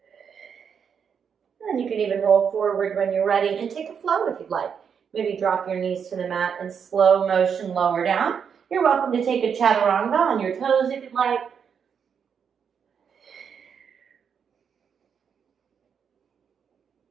And you can even roll forward when you're ready and take a float if you'd like. Maybe drop your knees to the mat and slow motion lower down. You're welcome to take a chaturanga on your toes if you'd like.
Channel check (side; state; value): left; quieter; 7.1 dB